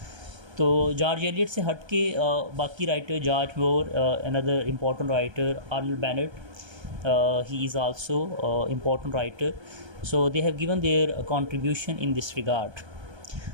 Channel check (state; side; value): late; left; 1.3 ms